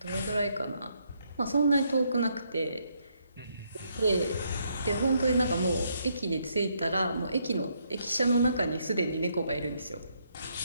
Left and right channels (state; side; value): inverted; both; correlation -0.74